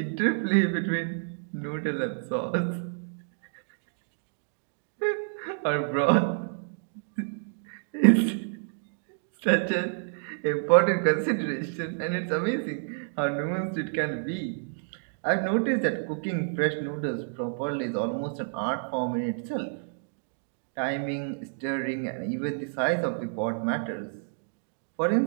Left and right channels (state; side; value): silent; left; digital silence